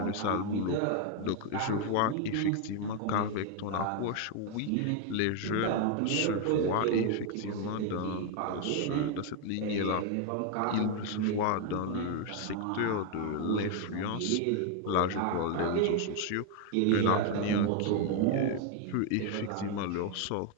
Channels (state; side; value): different; both; correlation 0.01